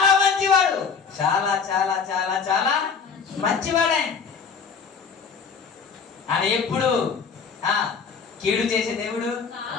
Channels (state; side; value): quieter; right; 5.8 dB